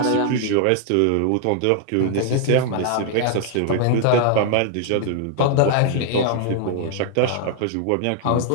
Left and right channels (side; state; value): both; different; correlation 0.00